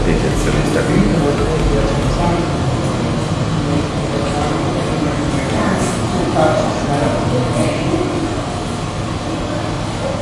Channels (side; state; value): both; identical; correlation 1.00